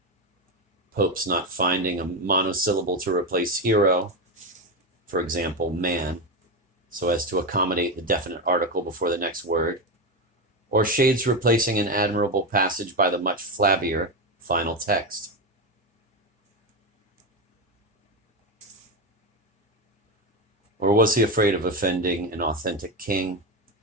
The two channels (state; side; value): normal; both; correlation 0.13